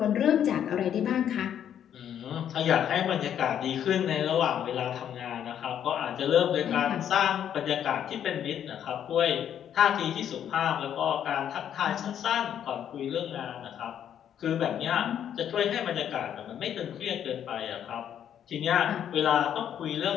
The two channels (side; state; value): right; quieter; 9.6 dB